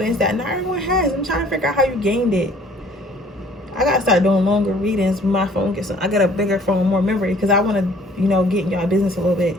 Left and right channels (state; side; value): normal; both; correlation 0.56